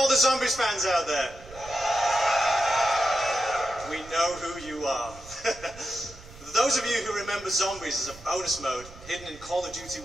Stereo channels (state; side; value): noise; right; rumble, 19 dB below the sound